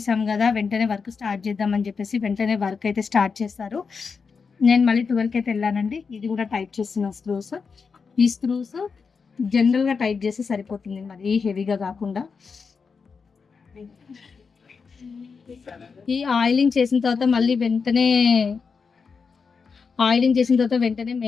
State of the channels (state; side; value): quieter; right; 5.3 dB